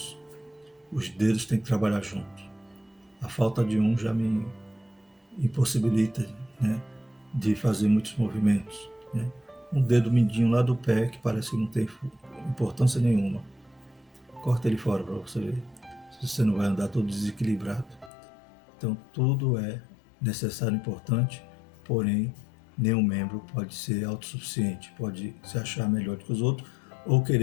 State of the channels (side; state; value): right; drops out; at 18.1 s